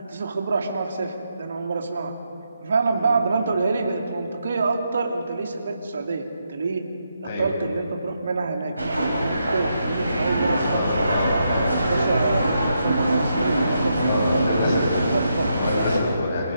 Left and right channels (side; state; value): both; inverted; correlation -0.81